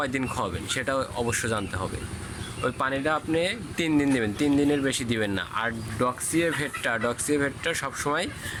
খাওয়াবেন সেটা অবশ্য জানতে হবে। ওই পানিটা আপনি 3 দিন দেবেন, 3 দিনের বেশি দিবেন না। আর ডক্সিএভেটটা সবসময়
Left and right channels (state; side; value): identical; both; correlation 1.00